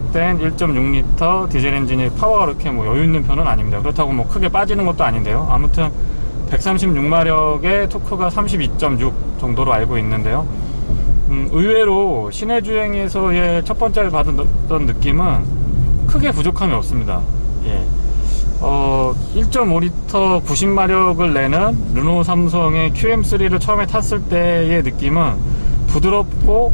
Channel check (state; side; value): inverted; both; correlation -1.00